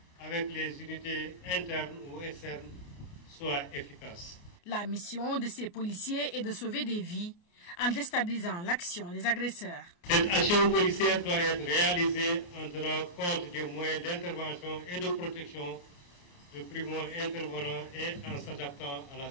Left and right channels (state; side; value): late; right; 28 ms